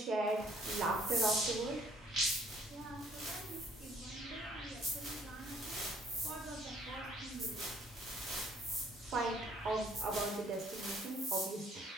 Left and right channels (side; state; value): both; normal; correlation 0.62